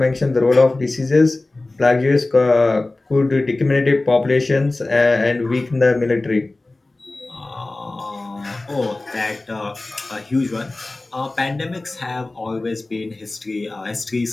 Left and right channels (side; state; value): right; quieter; 3.0 dB